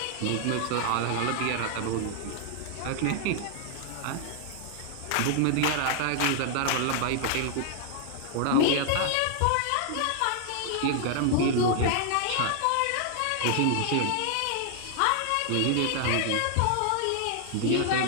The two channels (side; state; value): both; different; correlation 0.00